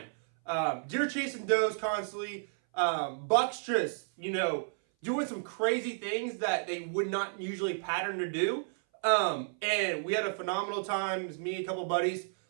Deer chasing does constantly. Bucks just, doing some crazy things that they would not usually pattern to do. And we had a phenomenal time. It was me, a couple buddies.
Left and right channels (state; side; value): silent; left; 57 dB below the other